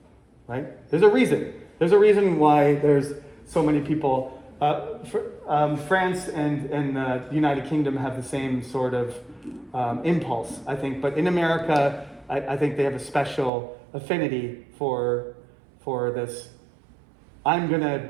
right? There's a reason. There's a reason why there's so many people. France and the United Kingdom have the same sort of impulse, I think. But in America, I think they have a special affinity for this. I'm going to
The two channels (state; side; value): drops out; left; at 13.5 s